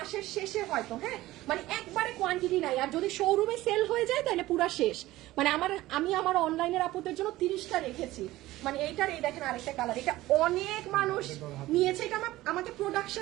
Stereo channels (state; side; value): quieter; left; 17.0 dB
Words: শেষে হয়তো, হ্যাঁ, মানে একবারে কোয়ান্টিটি নাই। আর যদি শোরুমে সেল হয়ে যায় তাহলে পুরা শেষ। মানে আমি আমার অনলাইনের আপুদের জন্য 30টা রেখেছি। মানে এইটার, এই দেখেন আরেকটা কালার, এটা অনেক মানুষ নিয়েছে, এটা আমাকে